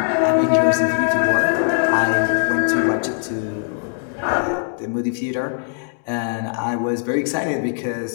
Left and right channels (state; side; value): silent; right; digital silence